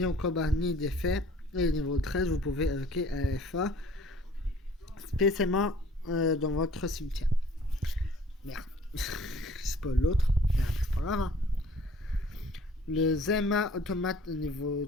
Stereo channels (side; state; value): both; normal; correlation 0.53